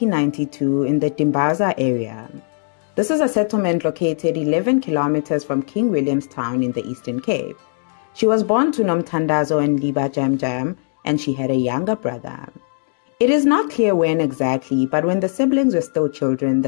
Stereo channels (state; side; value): silent; right; digital silence